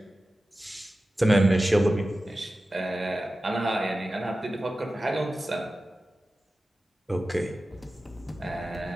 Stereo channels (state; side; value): normal; both; correlation 0.94